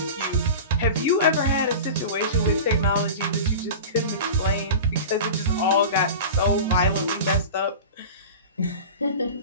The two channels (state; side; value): inverted; both; correlation -0.31